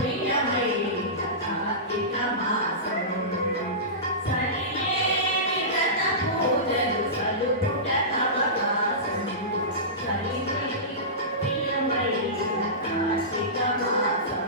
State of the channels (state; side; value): normal; both; correlation -0.20